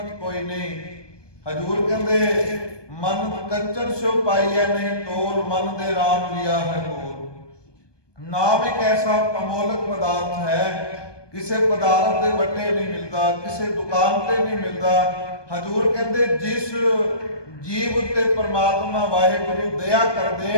ਕੋਈ ਨਹੀਂ। ਹਜ਼ੂਰ ਕਹਿੰਦੇ ਮਨ ਕੰਚਨ ਸਿਓ ਪਾਈਐ ਨਹੀਂ ਤੋਲ, ਮਨ ਦੇ ਰਾਮ ਲਿਆ ਹੈ ਬੋਲ। ਨਾਮ ਇੱਕ ਐਸਾ ਅਮੋਲਕ ਪਦਾਰਥ ਹੈ, ਕਿਸੇ ਪਦਾਰਥ ਦੇ ਵੱਟੇ ਨਹੀਂ ਮਿਲਦਾ, ਕਿਸੇ ਦੁਕਾਨ ਤੇ ਨਹੀਂ ਮਿਲਦਾ। ਹਜ਼ੂਰ ਕਹਿੰਦੇ ਜਿਸ ਜੀਵ ਉੱਤੇ ਪਰਮਾਤਮਾ ਵਾਹਿਗੁਰੂ ਦਇਆ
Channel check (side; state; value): right; late; 1.2 ms